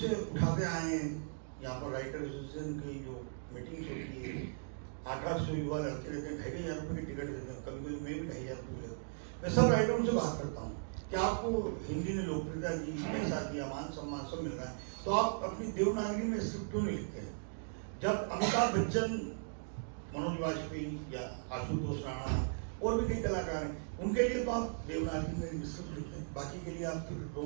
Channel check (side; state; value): left; silent; digital silence